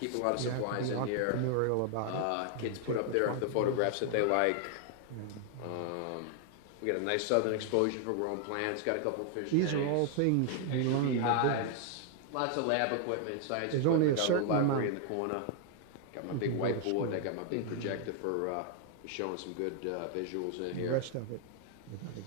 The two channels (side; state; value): both; different; correlation 0.00